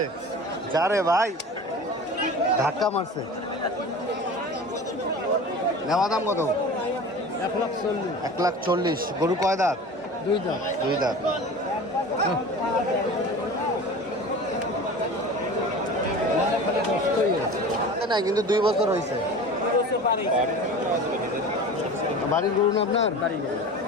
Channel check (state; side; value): normal; both; correlation 0.36